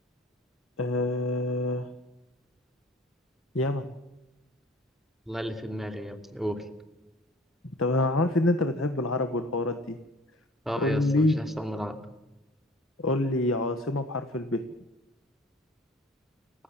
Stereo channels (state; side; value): normal; both; correlation 0.47